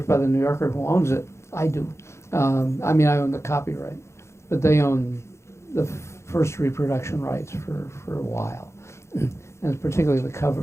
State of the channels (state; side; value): late; right; 0.13 ms